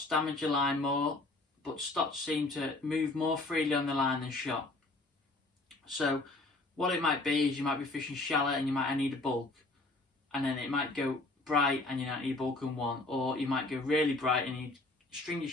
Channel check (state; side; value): quieter; right; 3.0 dB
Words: damage your line more, but stotz seem to move more freely on the line than shot. So what it might be is you might be fishing shallow and you might need a bulk, and then it might go bright and you might need a bulk in one, or you might go really bright and you string your